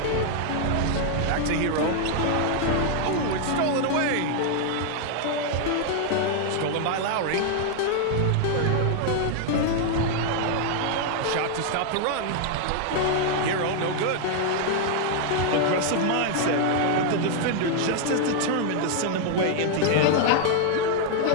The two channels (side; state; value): both; different; correlation 0.00